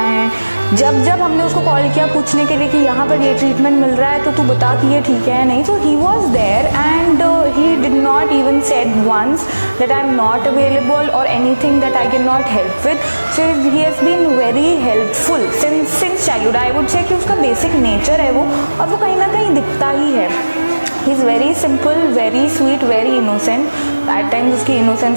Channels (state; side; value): inverted; both; correlation -1.00